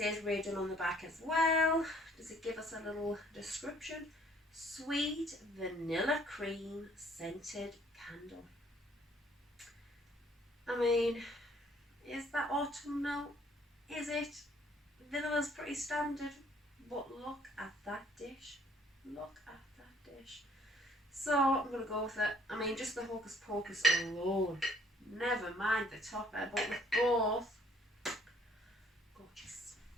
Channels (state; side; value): normal; both; correlation 0.61